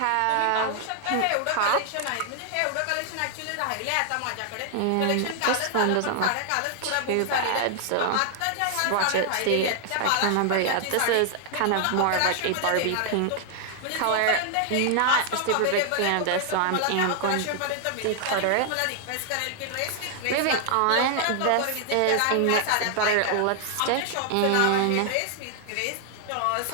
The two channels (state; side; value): different; both; correlation 0.00